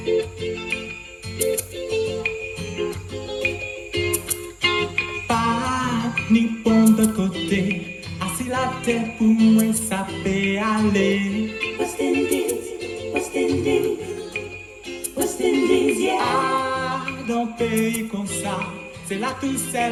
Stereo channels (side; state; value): both; identical; correlation 1.00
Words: Pas ni bon de côté. Assis la tête pour moi, ça peut aller. West Indies, West Indies, West Indies, yeah. Ah, dans pays comme ça, c'est là tout